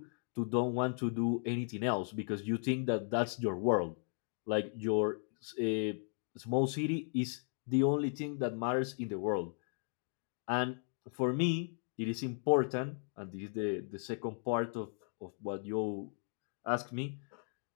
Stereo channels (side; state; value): right; silent; 53 dB below the other